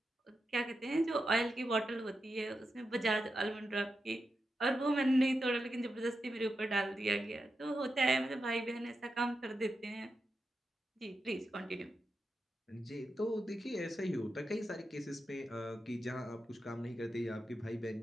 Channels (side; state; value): both; normal; correlation 0.88